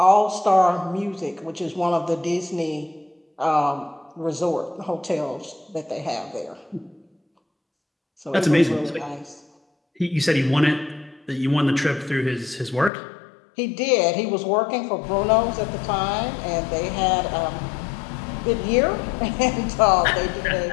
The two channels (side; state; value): right; drops out; at 12.9 s